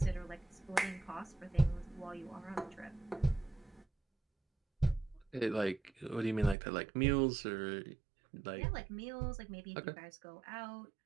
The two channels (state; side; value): drops out; left; at 6.6 s